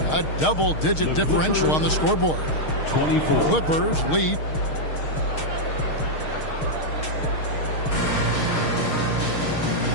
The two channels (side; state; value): right; late; 6.5 ms